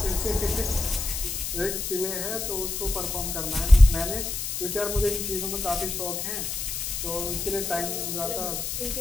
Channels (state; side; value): noise; left; hiss, 3 dB below the sound